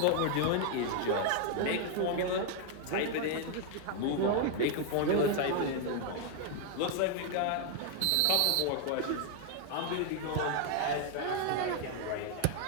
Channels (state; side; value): different; both; correlation 0.00